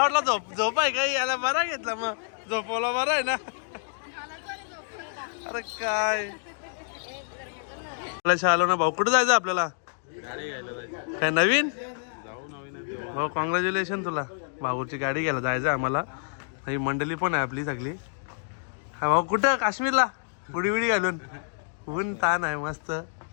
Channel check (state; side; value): silent; right; digital silence